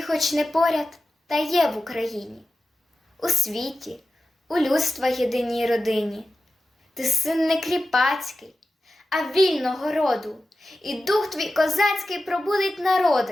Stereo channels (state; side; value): normal; both; correlation 0.93